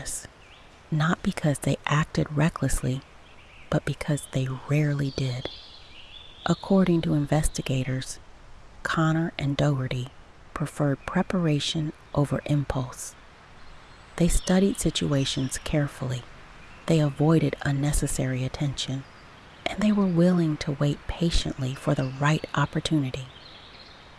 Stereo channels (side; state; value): both; identical; correlation 1.00